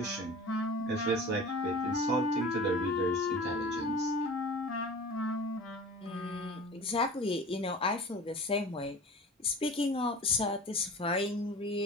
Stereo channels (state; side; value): normal; both; correlation 0.38